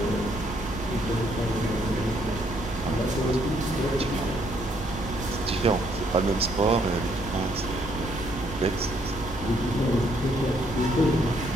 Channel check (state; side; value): normal; both; correlation 0.69